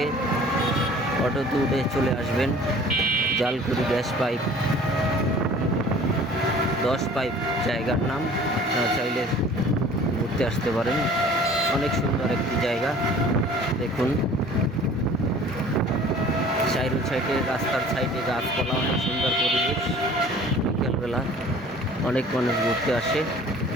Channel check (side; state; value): both; normal; correlation 0.48